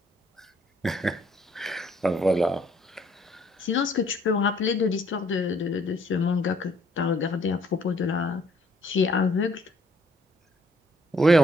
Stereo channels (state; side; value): normal; both; correlation 0.65